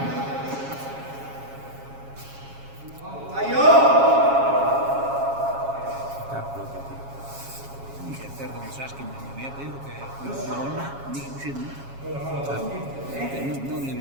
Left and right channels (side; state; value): left; late; 7.3 ms